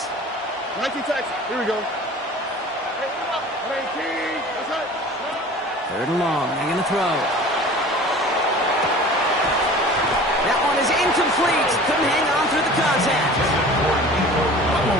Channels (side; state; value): both; normal; correlation 0.42